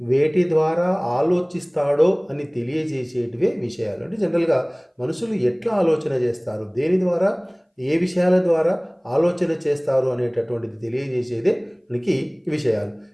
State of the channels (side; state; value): both; identical; correlation 1.00